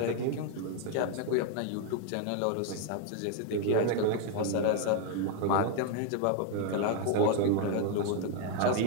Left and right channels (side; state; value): both; different; correlation 0.01